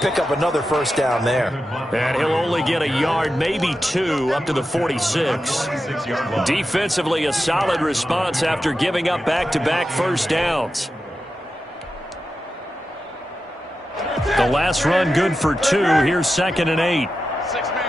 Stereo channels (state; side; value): normal; both; correlation 0.91